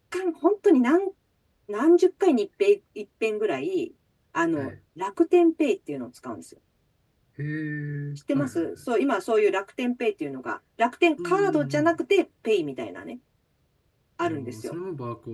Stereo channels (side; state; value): both; identical; correlation 1.00